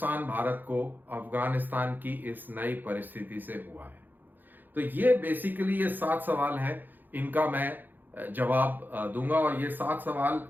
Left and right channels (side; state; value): left; late; 0.088 ms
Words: भारत को अफगानिस्तान की इस नई परिस्थिति से हुआ है। तो ये बेसिकली ये 7 सवाल हैं, इनका मैं जवाब दूंगा। और ये 7 सवाल